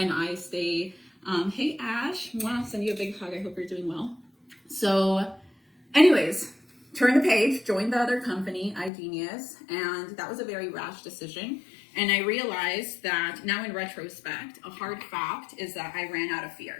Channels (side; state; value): right; drops out; at 8.9 s